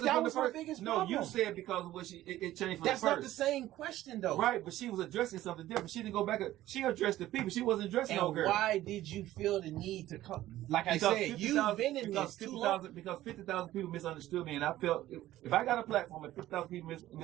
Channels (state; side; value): quieter; left; 14.7 dB